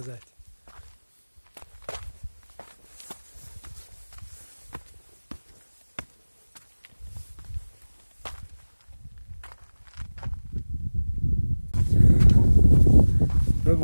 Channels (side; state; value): both; inverted; correlation -1.00